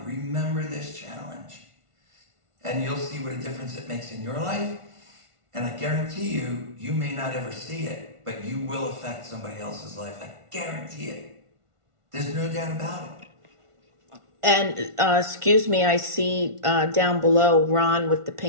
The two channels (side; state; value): left; late; 1.5 ms